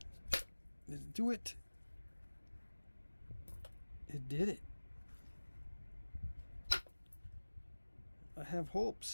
Did it do it? It did it. I have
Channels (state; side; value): inverted; both; correlation -1.00